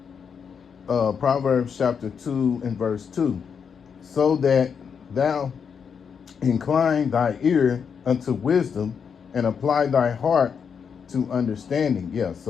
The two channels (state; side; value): quieter; right; 6.7 dB